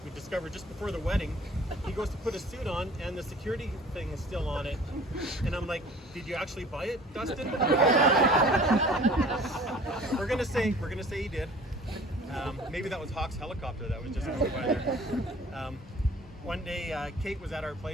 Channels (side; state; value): both; normal; correlation 0.48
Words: we discovered just before the wedding, he goes to put a suit on, and the security thing is still on it. And I'm like, "Did you actually buy it, Dustin?" We're gonna say he did. Maybe that was Hawk's helicopter that was just going by there. One day, Kate was at our